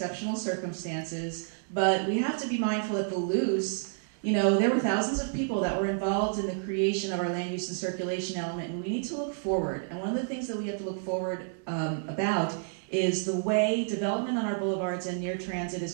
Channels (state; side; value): silent; left; digital silence